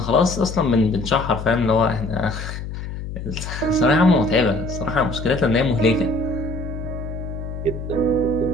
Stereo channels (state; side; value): noise; left; hum, 7 dB below the sound